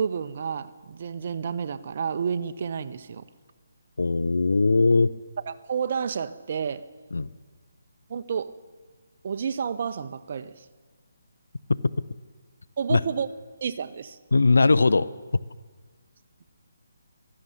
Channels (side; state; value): both; inverted; correlation -0.90